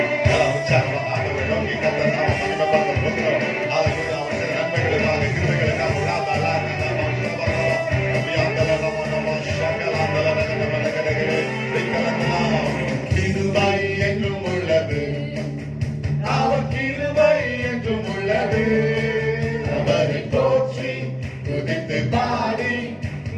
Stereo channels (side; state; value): both; identical; correlation 1.00